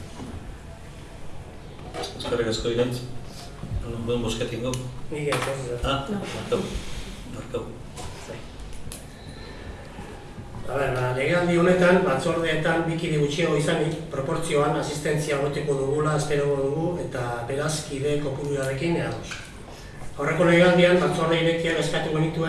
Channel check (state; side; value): identical; both; correlation 1.00